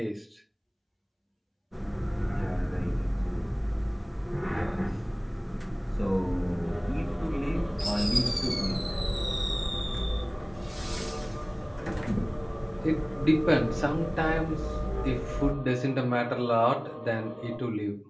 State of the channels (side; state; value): both; identical; correlation 1.00